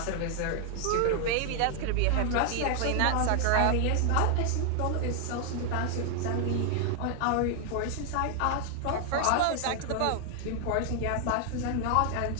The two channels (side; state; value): both; different; correlation 0.00